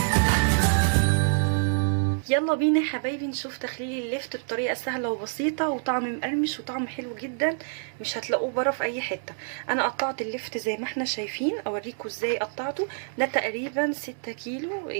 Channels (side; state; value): left; silent; digital silence